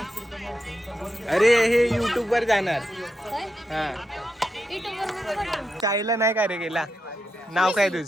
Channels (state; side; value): normal; both; correlation 0.86